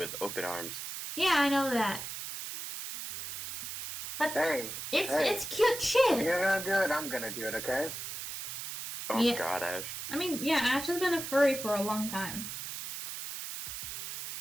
open arms. Yeah, I know that. But Hey, it's cute if shit. you're gonna do it, I'm gonna do it, okay? Oh Yeah. god, Ash. I mean, yeah, Ash has been a furry for a long time.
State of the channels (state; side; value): noise; right; hiss, 7 dB below the sound